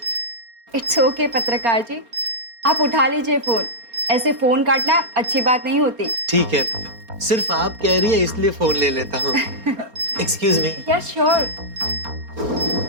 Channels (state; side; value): late; left; 4.3 ms